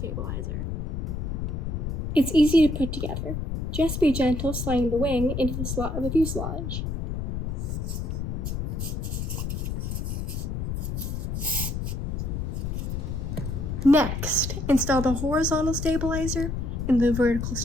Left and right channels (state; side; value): noise; left; rumble, 2 dB below the sound